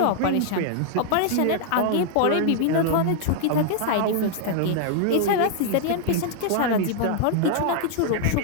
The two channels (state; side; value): different; both; correlation 0.00